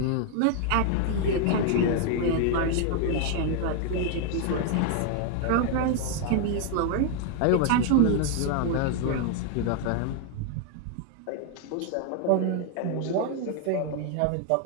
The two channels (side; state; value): both; different; correlation 0.00